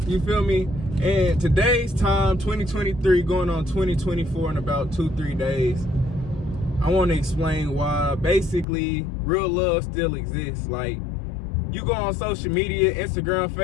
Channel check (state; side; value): drops out; right; at 8.7 s